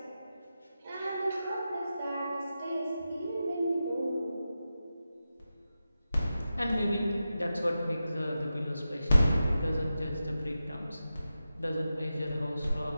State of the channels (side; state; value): both; inverted; correlation -0.92